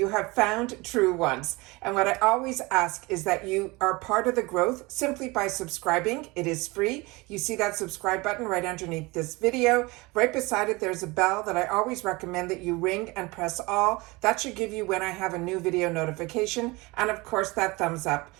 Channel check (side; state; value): left; quieter; 23.9 dB